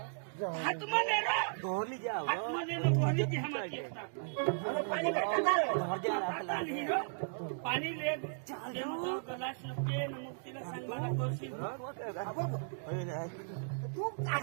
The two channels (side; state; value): left; silent; digital silence